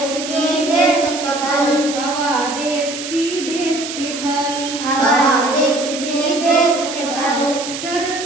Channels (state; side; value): noise; right; hiss, 8 dB below the sound